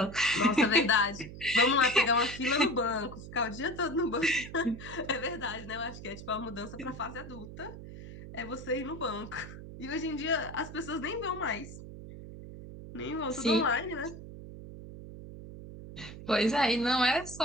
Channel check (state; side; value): noise; right; hum, 13 dB below the sound